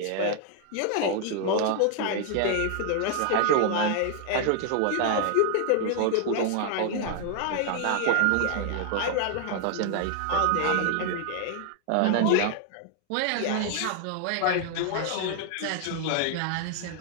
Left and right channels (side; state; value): both; different; correlation 0.00